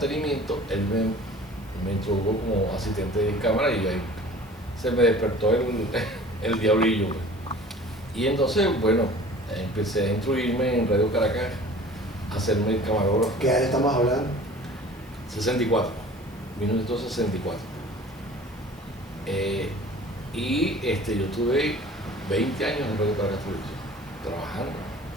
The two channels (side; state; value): both; normal; correlation 0.45